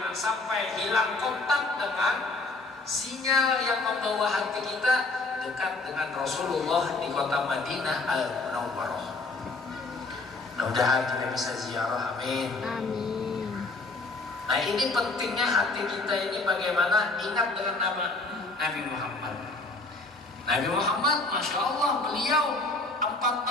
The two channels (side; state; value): right; quieter; 3.2 dB